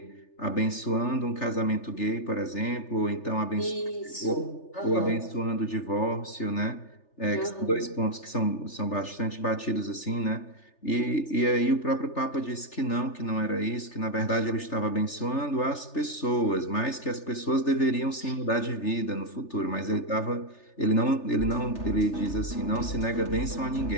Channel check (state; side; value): late; right; 3.4 ms